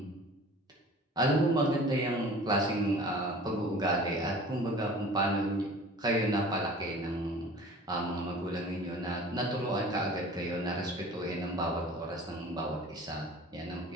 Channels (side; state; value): both; normal; correlation 0.44